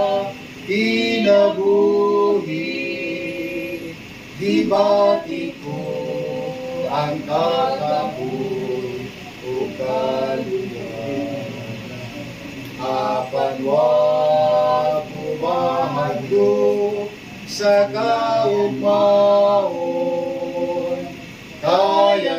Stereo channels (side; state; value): both; identical; correlation 1.00